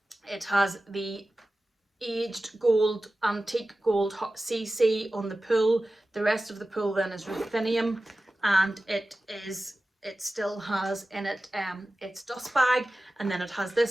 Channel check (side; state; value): both; normal; correlation 0.95